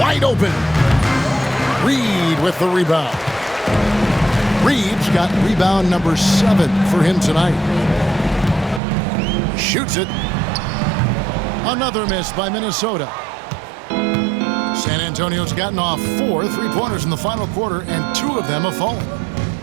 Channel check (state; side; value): drops out; left; at 8.8 s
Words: open. Reed with the rebound. Reeves got rebound number 7 for him tonight. Shoots it. Another miss by Minnesota. San Antonio's gotten off 4 3-pointers in the final quarter, and 2 of them have fallen.